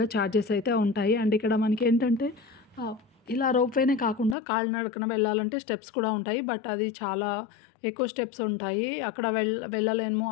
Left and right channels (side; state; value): right; drops out; at 4.4 s